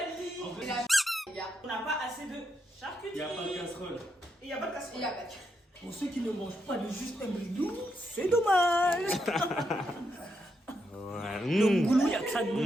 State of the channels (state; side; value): normal; both; correlation 0.81